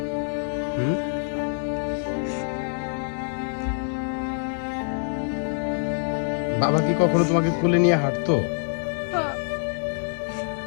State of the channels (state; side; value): silent; right; digital silence